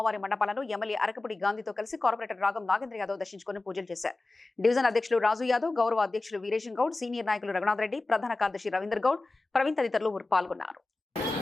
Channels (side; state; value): right; quieter; 3.2 dB